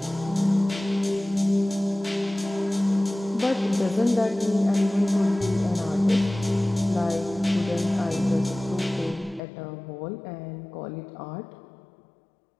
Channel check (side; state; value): right; drops out; at 9.4 s